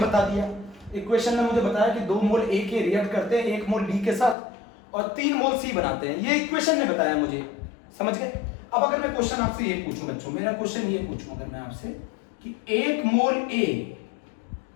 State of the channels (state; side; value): drops out; right; at 4.4 s